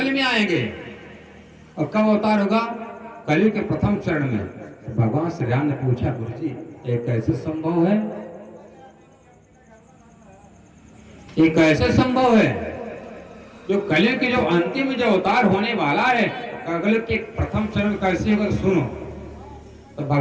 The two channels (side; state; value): both; identical; correlation 1.00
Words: में आएंगे। और कब अवतार होगा? कलयुग के प्रथम चरण में। भगवान श्री राम ने पूछा, गुरु जी ये कैसे संभव है? ये कैसे संभव है? जो कलयुग के जो अंतिम जो अवतार होने वाला है अगले के प्रथम चरण कैसे होगा सुनो। तो